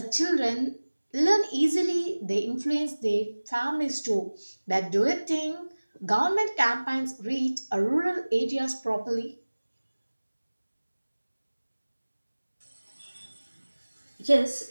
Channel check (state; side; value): inverted; both; correlation -1.00